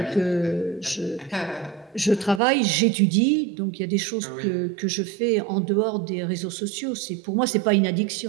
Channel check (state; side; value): drops out; left; at 2.4 s